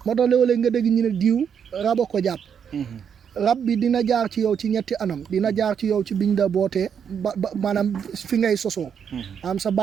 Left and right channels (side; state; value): left; quieter; 7.6 dB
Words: moo tax léeg-léeg nga dégg ñu ne diw raba ko jàpp rab bi dina jaar ci yow ci ñetti anam dina jaar ci yow ci biñ la bootee ba maanaam fi ngay sosoo am sa